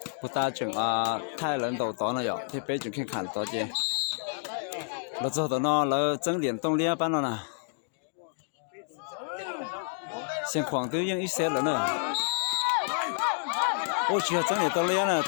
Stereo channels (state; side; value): silent; right; digital silence